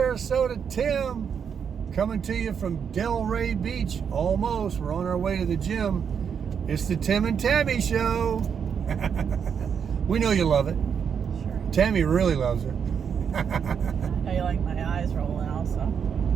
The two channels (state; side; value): quieter; left; 7.2 dB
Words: Tim coming to you from Delray Beach. Almost, we're on our way to the gym. It's the Tim and Tammy show. We know you love it. Sure. Tammy really loves her. I know you like my eyes rolling also.